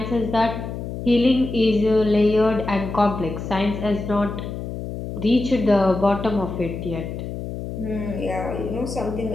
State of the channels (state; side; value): noise; left; hum, 7 dB below the sound